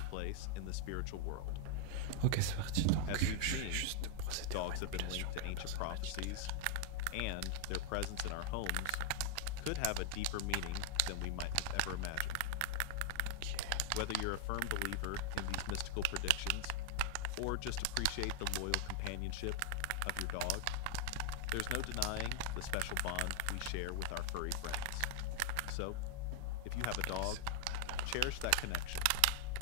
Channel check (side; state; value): both; different; correlation 0.00